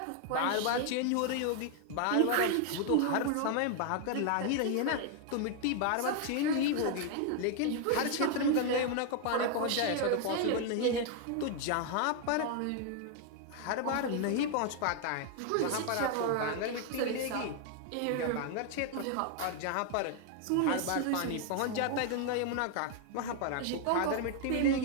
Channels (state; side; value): different; both; correlation 0.00